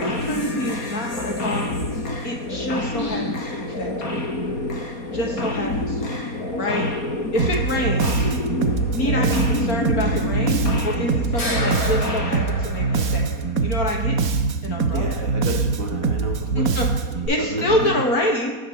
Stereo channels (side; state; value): right; late; 4.2 ms